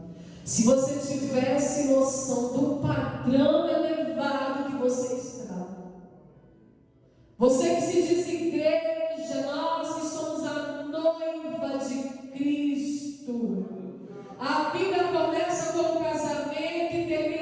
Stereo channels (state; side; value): identical; both; correlation 1.00